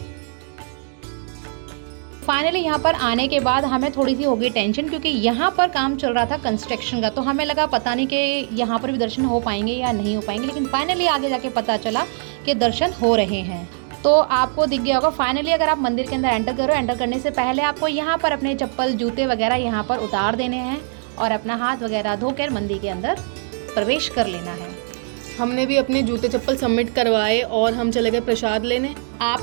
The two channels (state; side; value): silent; left; 63 dB below the other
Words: फाइनली यहाँ पर आने के बाद हमें थोड़ी सी हो गई टेंशन, क्योंकि यहाँ पर काम चल रहा था कंस्ट्रक्शन का। तो हमें लगा पता नहीं कि यहाँ पर भी दर्शन हो पाएंगे या नहीं हो पाएंगे, लेकिन फाइनली आगे जाके पता चला कि दर्शन हो रहे हैं। तो आपको दिख गया होगा फाइनली, अगर आप मंदिर के अंदर एंटर करो, एंटर करने से पहले आपको यहाँ पर अपने चप्पल जूते वगैरह यहाँ पर उतार देने हैं और अपना हाथ वगैरह धोकर मंदिर के अंदर प्रवेश कर लेना है। हमने भी अपने जूते चप्पल सबमिट करवाए और हम चले गए प्रसाद लेने। आप